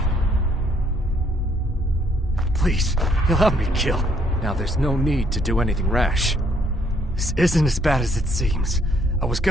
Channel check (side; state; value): both; normal; correlation 0.67